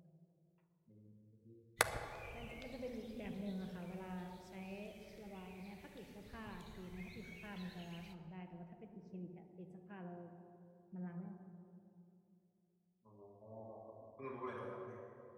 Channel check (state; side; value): identical; both; correlation 1.00